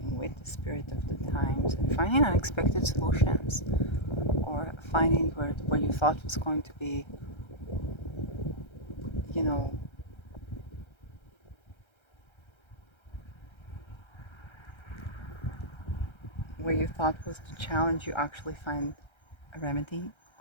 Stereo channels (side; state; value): right; late; 1.3 ms